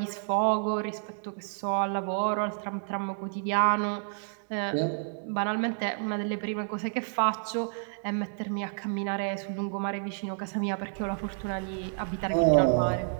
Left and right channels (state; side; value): silent; left; 57 dB below the other